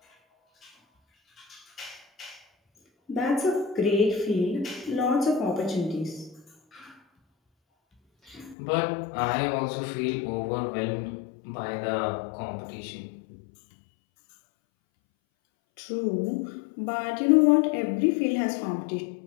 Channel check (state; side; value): drops out; right; at 8.6 s